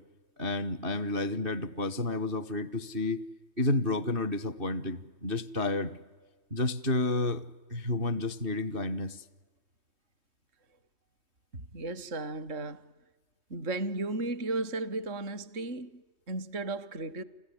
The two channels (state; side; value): late; left; 3.2 ms